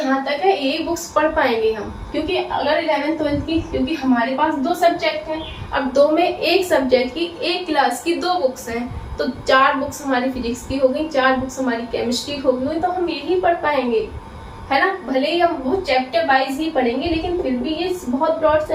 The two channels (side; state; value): both; identical; correlation 1.00